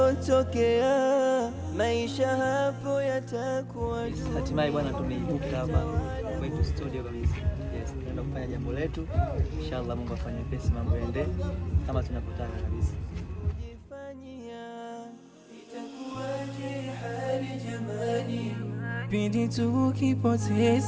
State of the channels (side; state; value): both; identical; correlation 1.00